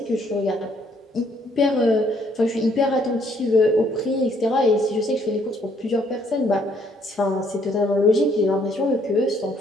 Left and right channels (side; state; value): both; normal; correlation 0.67